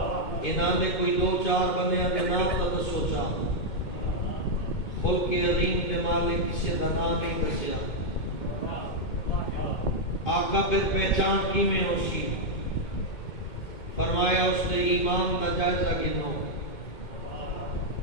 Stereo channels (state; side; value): late; right; 2.1 ms